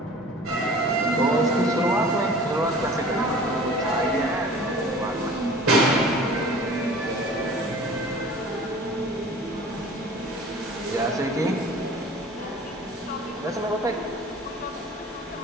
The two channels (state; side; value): normal; both; correlation 0.44